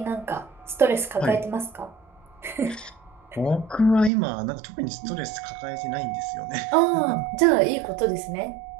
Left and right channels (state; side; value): drops out; left; at 4.1 s